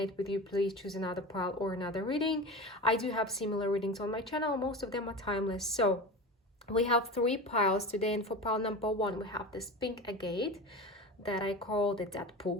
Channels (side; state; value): both; normal; correlation 0.29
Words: with you, please choose another pile or another reading. I do have similar readings on my channel. Most of them are timeless. So we have three piles today, and for pile number one we have this pink agate that I call the